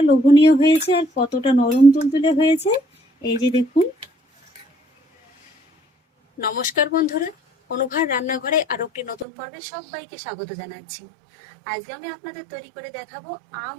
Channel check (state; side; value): drops out; left; at 9.2 s